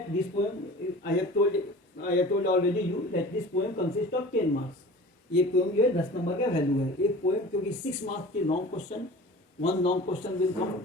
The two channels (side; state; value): both; normal; correlation 0.40